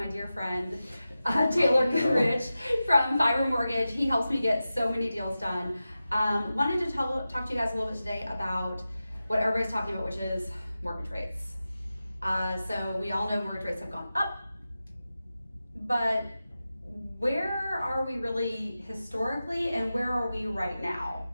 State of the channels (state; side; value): inverted; both; correlation -0.93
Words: dear friend Taylor Goodrich from Fiber Mortgage. He helps me get so many deals done. Wanted to talk to you guys a little bit today about what everybody's talking about, which is mortgage rates. So we all know mortgage rates have gone up, but where are we really historically and where are we right now?